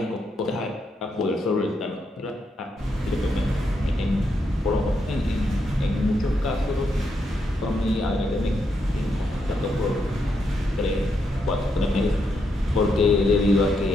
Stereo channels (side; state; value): both; normal; correlation 0.80